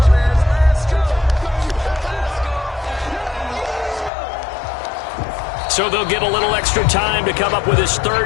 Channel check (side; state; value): right; drops out; at 4.1 s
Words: So they'll get a little extra time to come up with his